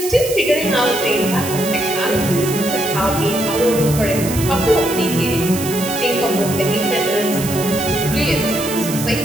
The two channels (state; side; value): noise; right; hiss, 8 dB below the sound